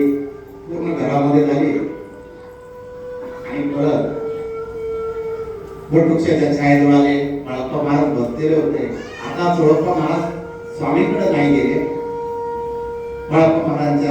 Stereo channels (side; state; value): both; identical; correlation 1.00